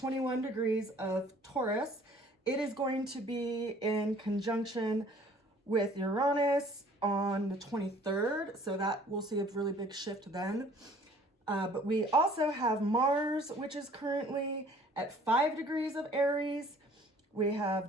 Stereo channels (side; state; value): both; normal; correlation 0.54